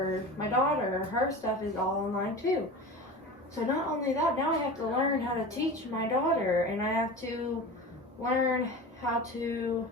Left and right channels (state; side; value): normal; both; correlation 0.32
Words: my daughter, her stuff is all online too. So not only that, now I have to learn how to teach my daughter, and I have to learn how to